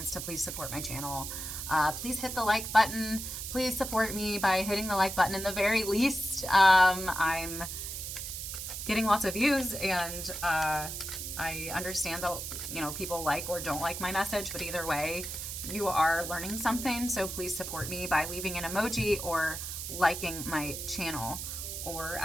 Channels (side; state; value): right; noise; hiss, 6 dB below the sound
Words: to please support my channel. Please hit the like button. Please support me by hitting the like button in the very least. I'm getting lots of views, and I understand that, you know, people like or don't like my message, but either way, you are learning something. So please support me by leaving an emoji or liking my channel, or